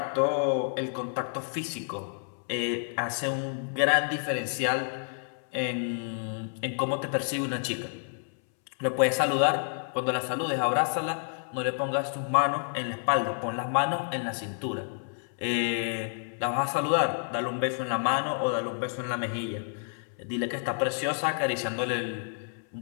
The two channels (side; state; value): right; silent; 58 dB below the other